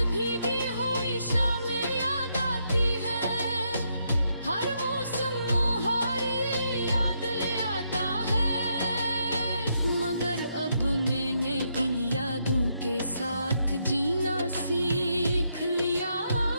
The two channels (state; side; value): inverted; both; correlation -0.78